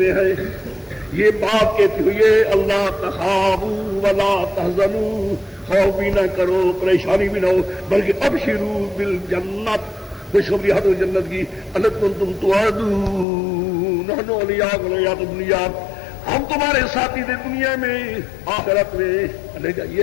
ہیں. یہ بات کہتی ہوئی ہے اللہ تخافوا ولا تحزنوا، خوف بھی نہ کرو، پریشانی بھی نہ ہو، بلکہ ابشروا بالجنت، خوشخبری حد جنت کی. التی کنتم توعدون نحن اولیاؤکم فی الحیاۃ الدنیا، ہم تمہارے ساتھی تھے دنیا میں، آخرت میں. یہ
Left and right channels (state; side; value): drops out; right; at 13.2 s